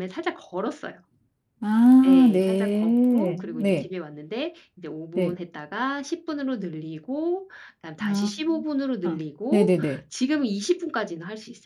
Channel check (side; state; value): both; identical; correlation 1.00